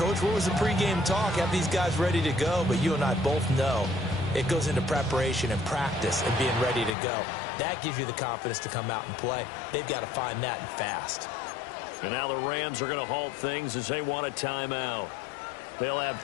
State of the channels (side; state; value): right; drops out; at 6.9 s